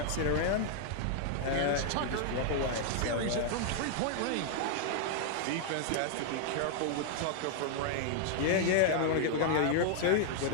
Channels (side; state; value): both; different; correlation -0.01